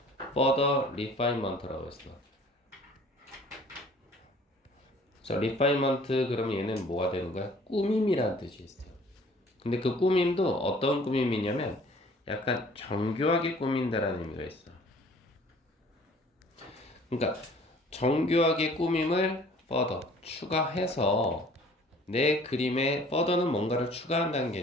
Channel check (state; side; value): normal; both; correlation 0.53